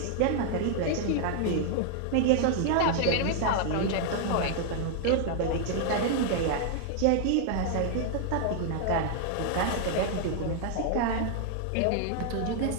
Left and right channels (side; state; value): both; different; correlation 0.00